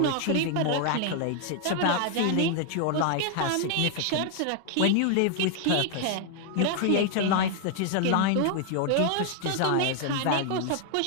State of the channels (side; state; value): both; different; correlation 0.00